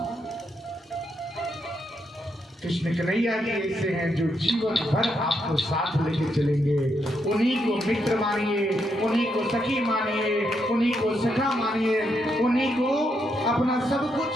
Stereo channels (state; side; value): normal; both; correlation 0.79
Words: कृष्ण कन्हैया जी ऐसे हैं जो जीवन भर आपको साथ लेके चलेंगे। उन्हीं को मित्र मानिए, उन्हीं को सखी मानिए, उन्हीं को सखा मानिए, उन्हीं को अपना सब